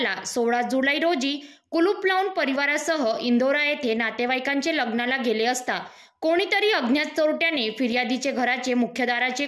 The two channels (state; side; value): identical; both; correlation 1.00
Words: 16 जुलै रोजी कुलूप लावून परिवारासह इंदोरा येथे नातेवाईकांचे लग्नाला गेले असता कोणीतरी अज्ञात चोरट्याने फिर्यादीचे घराचे मुख्य दाराचे